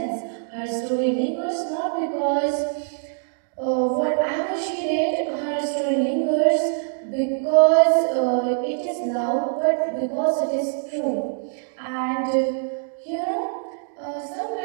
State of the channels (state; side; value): silent; left; digital silence